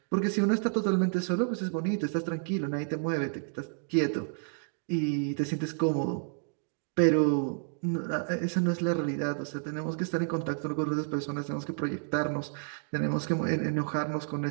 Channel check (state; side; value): silent; left; 56 dB below the other